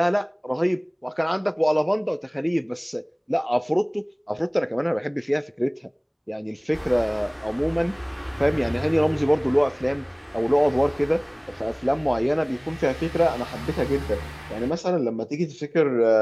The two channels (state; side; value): identical; both; correlation 1.00